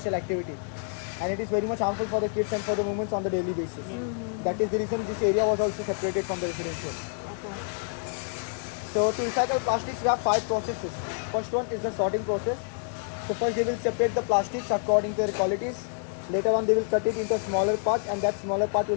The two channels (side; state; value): right; silent; digital silence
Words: activity. And it is very much harmful for the kids and for the women on the daily basis. That is the reason this area was also separated from the residential. So to recycle plastics, we have 5 processes. First one is the sorting process. So first they will separate the plastics according to their qualities. Later on they will cut it into a smaller part, and that smaller part will